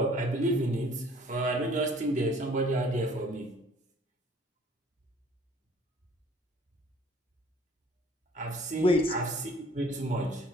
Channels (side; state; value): both; normal; correlation 0.54